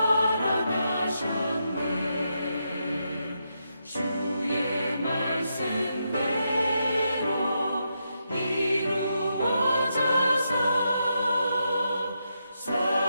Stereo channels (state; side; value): inverted; both; correlation -0.83